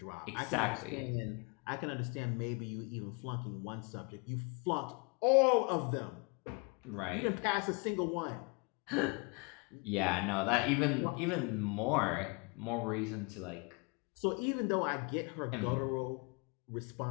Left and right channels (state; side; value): quieter; right; 31.4 dB